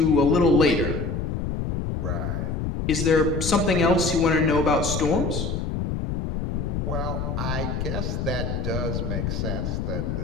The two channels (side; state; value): left; noise; rumble, 2 dB below the sound